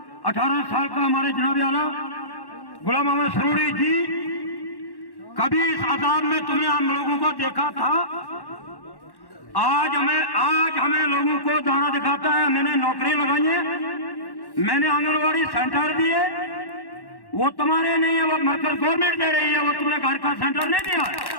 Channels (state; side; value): late; right; 1.1 ms